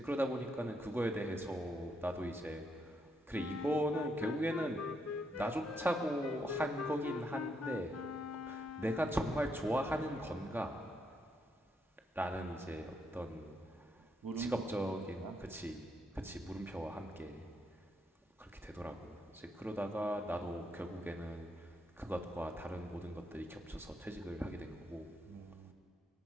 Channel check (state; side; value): normal; both; correlation 0.77